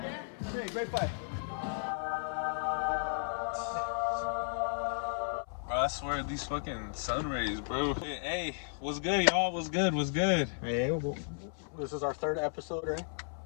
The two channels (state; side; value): silent; right; 55 dB below the other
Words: Dan? Hey, great fight. Bro, I swear these fucking sun rays, bro. Hey, what's good, y'all? What's good? What's good? Hey, well, this is our third episode, right?